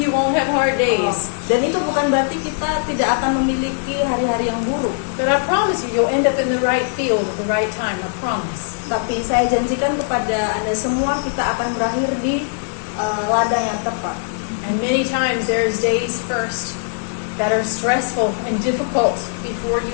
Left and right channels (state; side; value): silent; right; digital silence